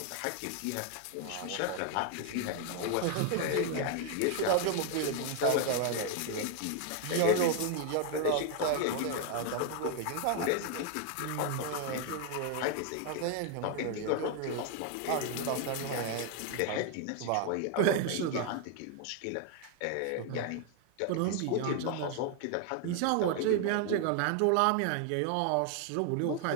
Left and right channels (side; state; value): both; different; correlation 0.00